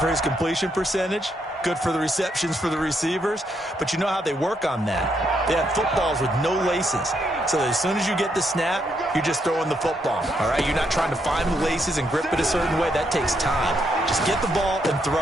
his completion percentage. Good for the receptions for the receivers. But you know how they work on that. They have footballs with no laces. So as soon as you get the snap, you're just throwing the football. All right, you're not trying to find the laces and grip it a certain way. That takes time. Just get the ball and throw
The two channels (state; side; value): normal; both; correlation 0.77